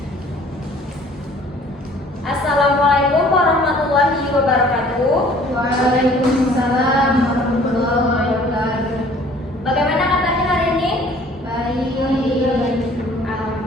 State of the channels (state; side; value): normal; both; correlation 0.53